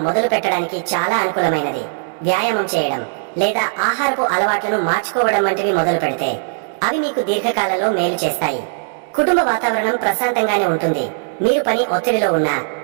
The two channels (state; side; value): silent; left; digital silence